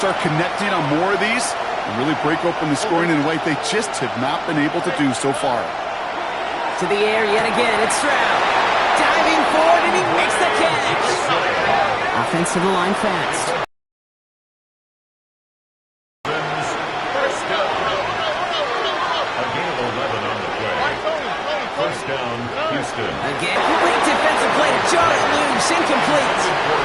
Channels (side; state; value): both; identical; correlation 1.00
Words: connecting on more of these and really break open the scoring in a way they just have not been able to do so far. To the air yet again, it's Stroud. Diving forward, and he makes the catch. Offense to the line fast. Again, great defensive play to jar it loose, incomplete.